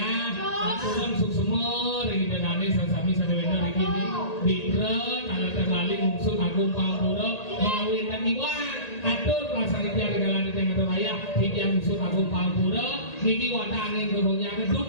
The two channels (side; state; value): right; late; 1.8 ms